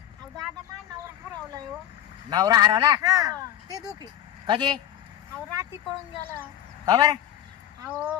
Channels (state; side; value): quieter; right; 11.7 dB